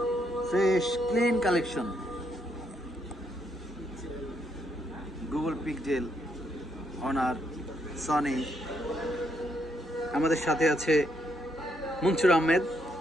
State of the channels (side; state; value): both; normal; correlation 0.76